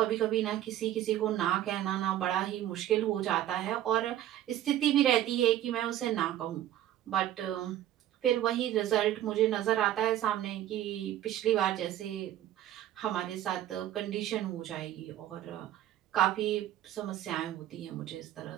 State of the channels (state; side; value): quieter; left; 12.7 dB